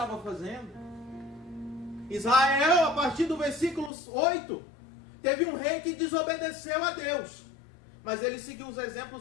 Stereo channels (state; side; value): drops out; right; at 3.9 s